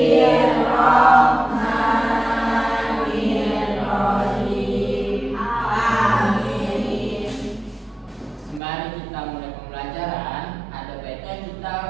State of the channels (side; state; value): left; drops out; at 8.6 s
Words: Amin. Sembari kita mulai pembelajaran, ada baiknya